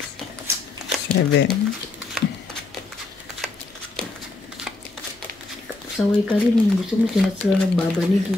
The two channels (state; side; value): quieter; right; 3.2 dB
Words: 7. Saway ka rin. Gusto mo sinats lang nagbabanig.